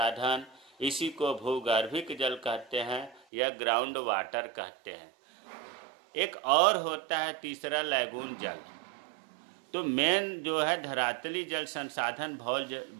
इसी को भूगर्भिक जल कहते हैं या ग्राउंड वाटर कहते हैं। एक और होता है तीसरा, लैगून जल। तो मेन जो है धरातलीय जल संसाधन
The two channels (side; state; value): left; drops out; at 3.2 s